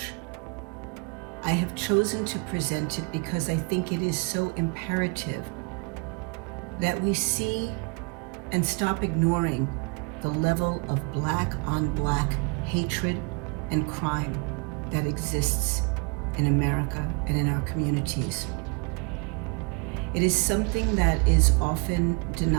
I have chosen to present it because I think it is so imperative that we see and stop ignoring the level of Black on Black hatred and crime that exists in America and in our communities. It is something that is often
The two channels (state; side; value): quieter; left; 32.1 dB